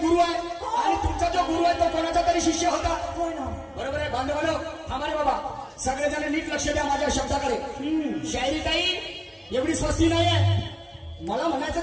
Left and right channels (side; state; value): both; identical; correlation 1.00